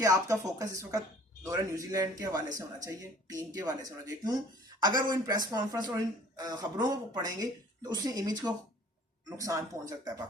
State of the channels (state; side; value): normal; both; correlation 0.52